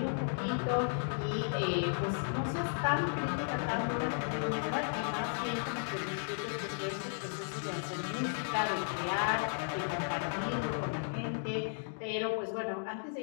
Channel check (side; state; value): right; silent; digital silence